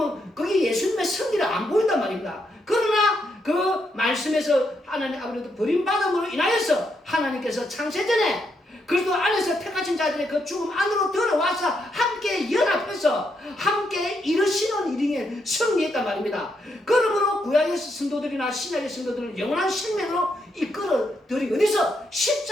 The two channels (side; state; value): both; normal; correlation 0.79